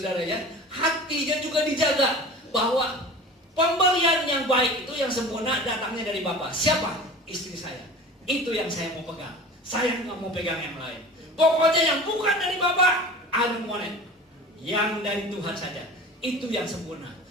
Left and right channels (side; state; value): both; normal; correlation 0.38